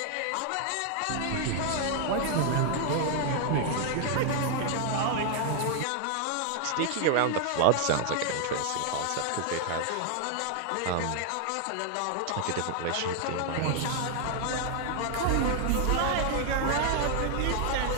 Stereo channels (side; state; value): both; different; correlation 0.00